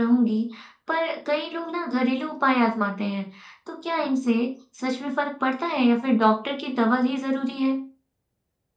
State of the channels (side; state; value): both; identical; correlation 1.00